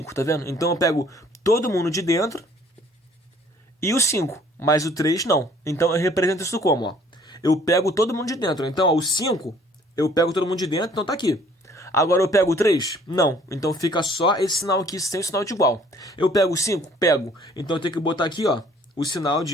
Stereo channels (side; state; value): both; normal; correlation 0.57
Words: tá vendo? Então eu pego todo mundo de dentro e o 5, mas o 3 não. Então eu represento isso como, ó? Eu pego todo mundo de dentro. Então, ó, o 5, eu pego todo mundo de dentro, então tá aqui. Agora eu pego o 3? Não. Então fica só esse sinal aqui sem o sinal de igual. Eu pego o 5? Pego. Então eu tenho que botar aqui, ó, o sinal